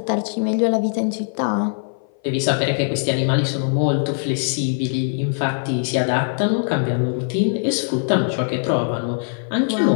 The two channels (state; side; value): silent; right; 57 dB below the other